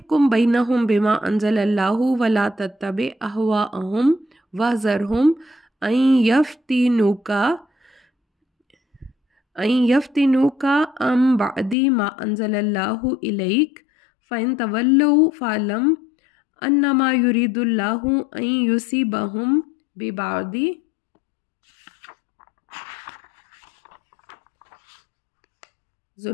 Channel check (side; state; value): right; drops out; at 11.8 s